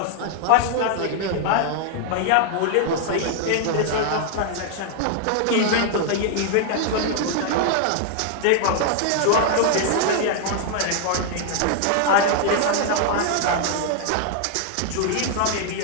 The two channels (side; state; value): both; different; correlation 0.00